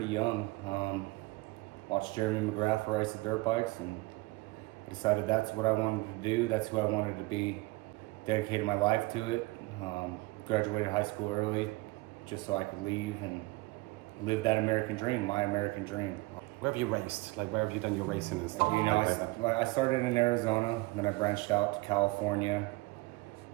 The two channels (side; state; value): left; quieter; 22.7 dB